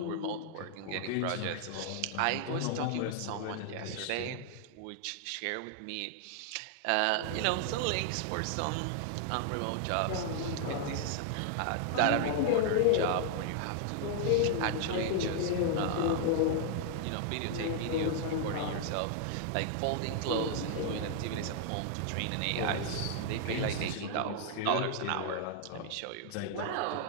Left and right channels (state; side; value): different; both; correlation -0.01